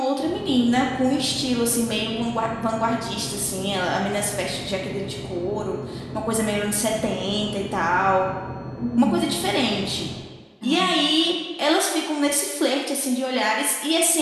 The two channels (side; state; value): both; identical; correlation 1.00